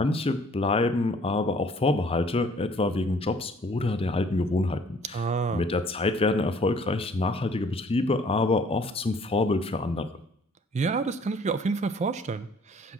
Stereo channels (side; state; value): both; normal; correlation 0.57